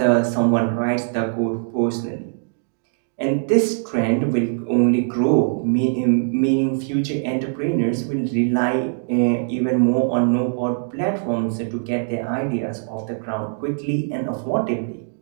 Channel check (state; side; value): silent; left; digital silence